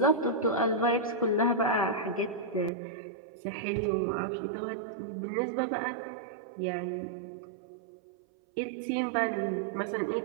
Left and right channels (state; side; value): drops out; left; at 2.7 s